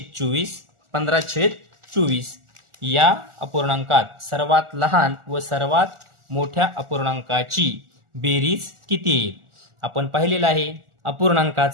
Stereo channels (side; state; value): left; late; 1.4 ms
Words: 15/24 या अपूर्णांकात सर्वात लहान व सर्वात मोठ्या अपूर्णांकाची बेरीज किती येईल? आपण पाहिलेलं आहे